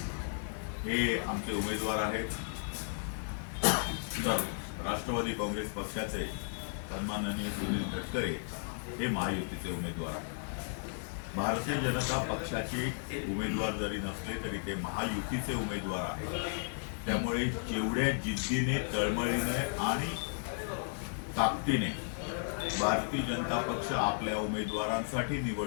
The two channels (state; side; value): silent; right; 55 dB below the other